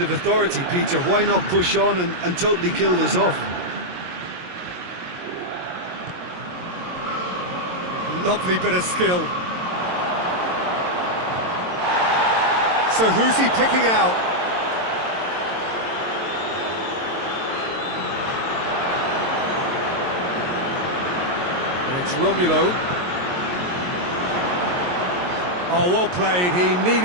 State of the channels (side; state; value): left; late; 22 ms